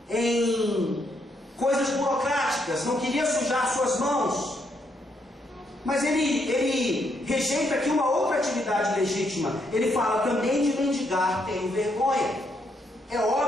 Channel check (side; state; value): both; normal; correlation 0.75